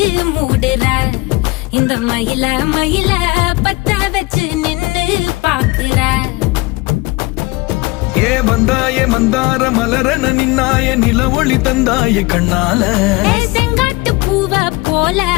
மூடுற இந்த மயில மயில பத்த வச்சு நின்னு பாக்குற. ஏ வந்தாய மந்தார மலரன நின்னாய நில ஒளி தந்தாய கண்ணால. செங்காட்டு பூவ போல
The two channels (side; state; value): right; quieter; 23.0 dB